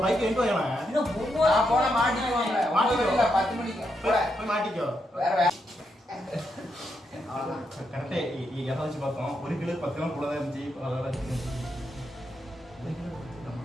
பைக் எங்க போயனா? இன்னும் நான் போன மாட்டிக்குவாங்க. மாட்டிக்கல 10 மணிக்கு. போய் மாட்டிக்கோ. வேற கரெக்டா எதாச்சும் பார்த்தோம். 1 கிலோ 10 கிலோ கூட தான் இருந்துச்சு. அதனால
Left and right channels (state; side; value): normal; both; correlation 0.81